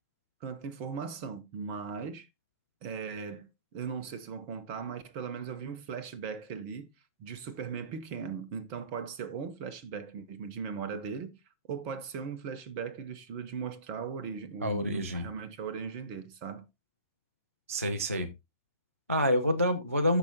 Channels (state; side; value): inverted; both; correlation -0.49